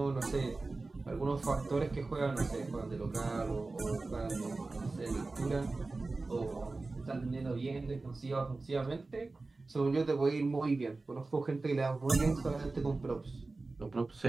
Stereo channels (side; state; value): left; quieter; 3.5 dB